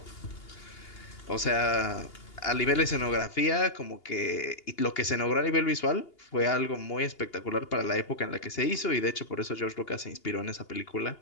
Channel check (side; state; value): right; late; 2.8 ms